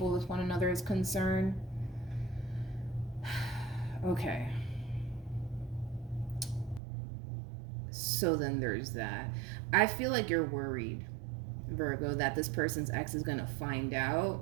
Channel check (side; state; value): left; drops out; at 6.8 s